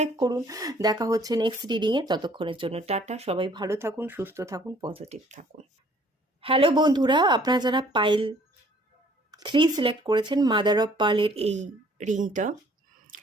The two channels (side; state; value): both; normal; correlation 0.58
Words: করুন। দেখা হচ্ছে নেক্সট রিডিংয়ে, ততক্ষণের জন্য টাটা। সবাই ভালো থাকুন, সুস্থ থাকুন, পজিটিভ থাকুন। হ্যালো বন্ধুরা, আপনারা যারা পাইল 3 সিলেক্ট করেছেন, মাদার অফ পার্লের এই রিংটা,